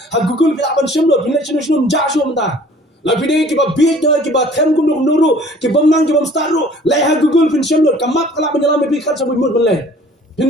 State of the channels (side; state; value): both; normal; correlation 0.51